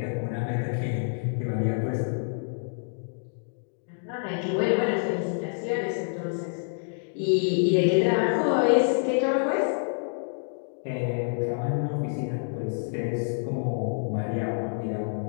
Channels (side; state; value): right; silent; digital silence